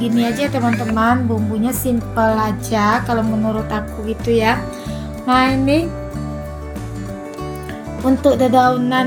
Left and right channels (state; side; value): identical; both; correlation 1.00